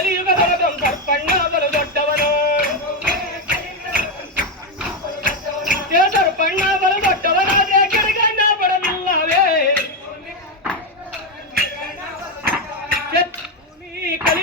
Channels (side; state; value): both; normal; correlation 0.07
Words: ಸರ್ಪಣ್ಣ ಬಲು ದೊಡ್ಡವನು ಸರ್ಪಣ್ಣ ಬಲು ದೊಡ್ಡವನಾದ್ರೆ ಕೆಳಗಣ್ಣ ಬರಲಿಲ್ಲವೇ